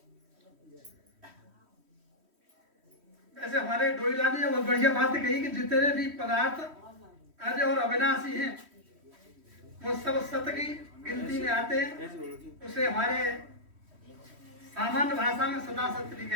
ऐसे हमारे डोईला ने बहुत बढ़िया बात कही कि जितने भी पदार्थ अजय और अविनाशी हैं वो सब सत्य की गिनती में आते हैं। उसे हमारे सामान्य भाषा में सदा सत्य भी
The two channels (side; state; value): left; late; 3.1 ms